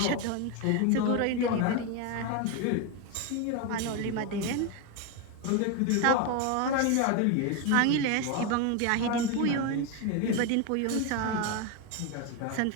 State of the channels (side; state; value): both; different; correlation 0.02